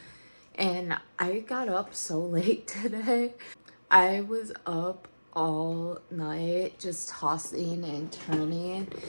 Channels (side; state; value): both; inverted; correlation -1.00